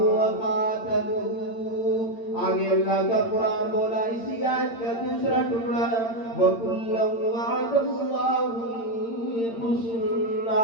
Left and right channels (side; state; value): right; late; 8.8 ms